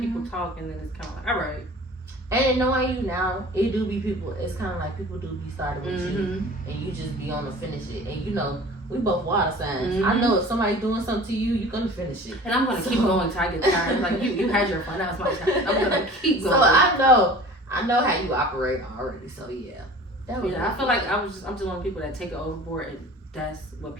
talk, and then it's kind of like, all right. And knowing you now, it do be people. It's kind of like people do be starting with you, and you just be on to finish it. And you know, we both water signs. I know if somebody doing something to you, you're gonna finish it. And I'm gonna keep going until I get tired. Like you had your fun. Now it's my turn. I'm gonna keep going. So I know how you operate already. So yeah. I feel like I'm just one of the people that take it overboard, and that's what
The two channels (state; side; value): normal; both; correlation 0.43